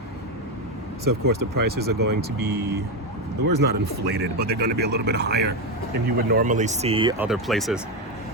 So of course the prices are going to be, the word's not inflated, but they're going to be a little bit higher than you would normally see other places.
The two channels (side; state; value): both; normal; correlation 0.10